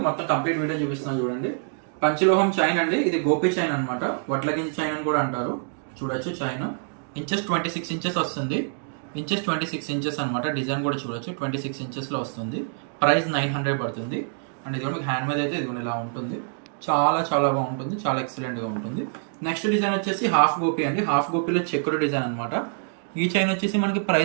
మొత్తం కంప్లీట్ వీడియో చూపిస్తున్నాను చూడండి. పంచలోహం చైన్ అండి, ఇది గోపి చైన్ అనమాట, వడ్లగింజ చైన్ అని కూడా అంటారు. చూడొచ్చు చైన్ ఇంచెస్ 26 ఇంచెస్ వస్తుంది, ఇంచెస్ 26 ఇంచెస్ అనమాట. డిజైన్ కూడా చూడొచ్చు 26 ఇంచెస్ లో వస్తుంది. ప్రైస్ 900 పడుతుంది. అండ్ ఇది మీకు హ్యాండ్ మీద అయితే ఇది ఇలా ఉంటుంది, చాలా చాలా బాగుంటుంది, చాలా ఎక్సలెంట్ గా ఉంటుంది. నెక్స్ట్ డిజైన్ వచ్చేసి హాఫ్ గోపి అండి, హాఫ్ గోపిలో చెక్కుడు డిజైన్ అనమాట. ఈ చైన్ వచ్చేసి మనకి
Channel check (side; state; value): left; silent; digital silence